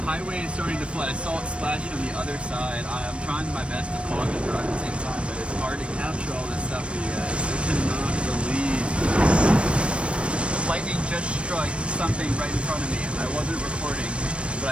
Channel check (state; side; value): late; left; 0.060 ms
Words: highway is starting to flood. I saw it splash from the other side. I'm trying my best to talk and drive at the same time, but it's hard to capture all this stuff for you guys. I cannot believe this. Lightning just struck something right in front of me. I wasn't recording,